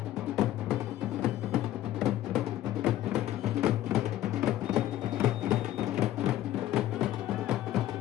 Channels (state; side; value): quieter; right; 13.7 dB